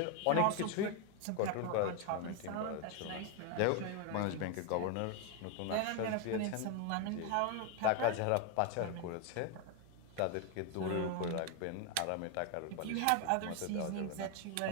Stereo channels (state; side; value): different; both; correlation 0.01